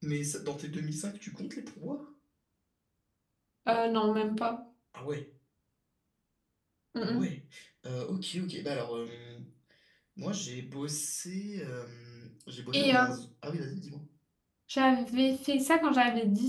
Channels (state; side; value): identical; both; correlation 1.00